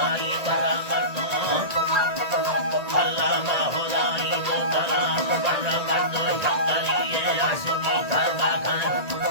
baramatno Allah mahulai botala baramatno changaliye ashimi karba kan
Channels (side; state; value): left; late; 1.8 ms